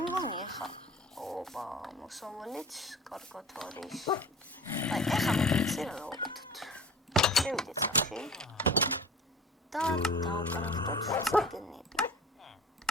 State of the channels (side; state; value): both; normal; correlation 0.40